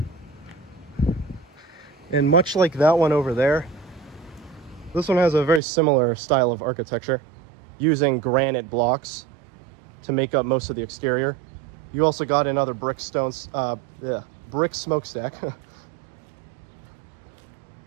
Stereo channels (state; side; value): drops out; left; at 5.6 s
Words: And much like that one over there, this one has a very similar style of architecture, using granite blocks to make up most of the exterior. You also got another brick smokestack.